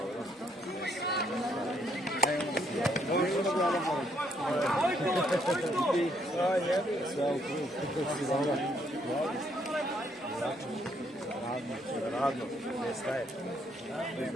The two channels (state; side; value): normal; both; correlation 0.71